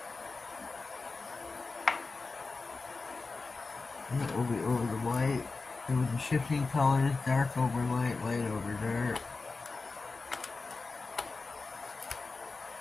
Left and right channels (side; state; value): right; quieter; 4.0 dB